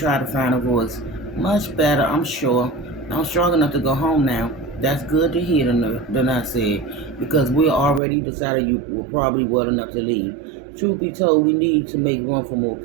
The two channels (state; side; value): drops out; left; at 8.0 s